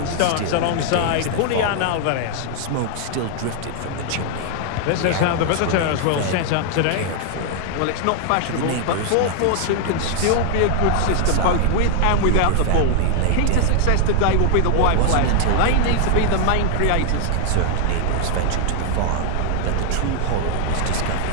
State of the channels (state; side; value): different; both; correlation 0.00